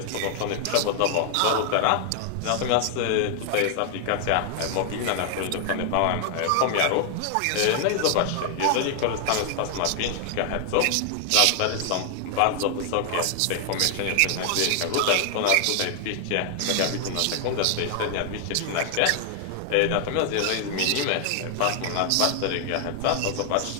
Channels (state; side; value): different; both; correlation 0.00